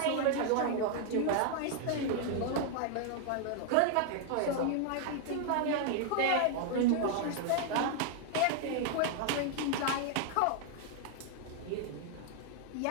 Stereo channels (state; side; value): different; both; correlation 0.00